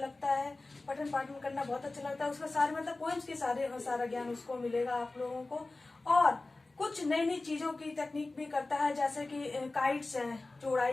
है, पठन पाठन करना बहुत अच्छा लगता है। उसमें सारे मतलब पोएम्स की सारा ज्ञान उसको मिलेगा आप लोगों को। और कुछ नई नई चीजों की तकनीक भी करता है, जैसे कि काइट्स हैं जो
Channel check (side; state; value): right; quieter; 3.2 dB